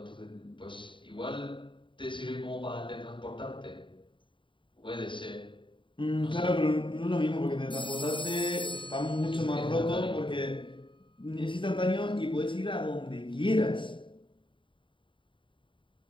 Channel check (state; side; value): late; right; 0.24 ms